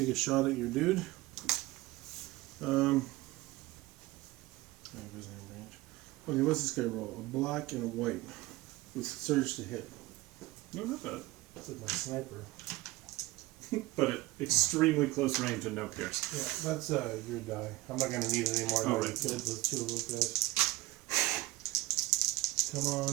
a shot at your dude. Okay, what's this guy roll? A black and a white with surge to hit. No, not bad. That's like my sniper. But at extremely close range and no pierce. Yeah, that's your die. I'm not gonna need it anymore. Oh, right. Dead with 2 of those guys. Come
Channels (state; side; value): quieter; left; 19.1 dB